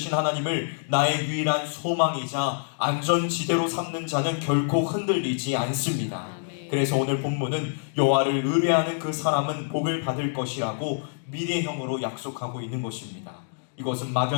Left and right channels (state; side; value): silent; right; digital silence